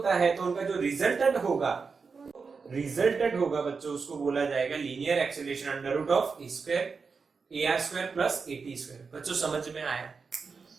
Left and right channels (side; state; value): left; quieter; 5.0 dB